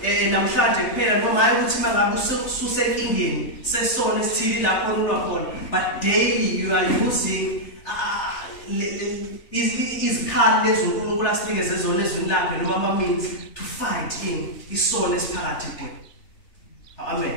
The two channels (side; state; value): right; late; 3.4 ms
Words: namhlanje kuphela noma hayi ukuthi mangabe ususenkingeni sesono esithili lapho unwa khona, but daily you are using izikhali lezi uNkulunkulu asinikeze zona ezweni lakhe noma ama-means to fight in isono esiphakathi kwethu.